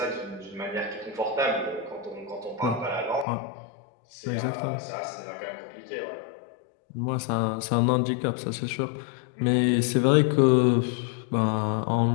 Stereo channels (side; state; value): right; drops out; at 3.2 s